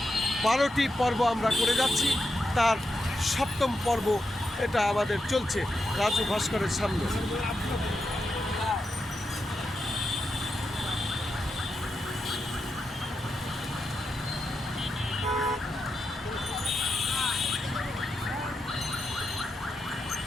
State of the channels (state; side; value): normal; both; correlation 0.87